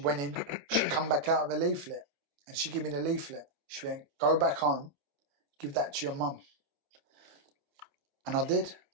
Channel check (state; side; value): late; left; 28 ms